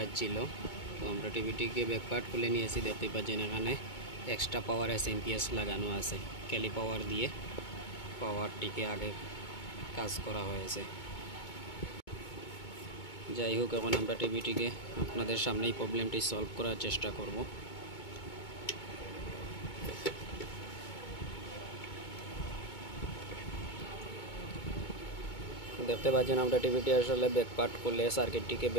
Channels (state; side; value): late; right; 2.2 ms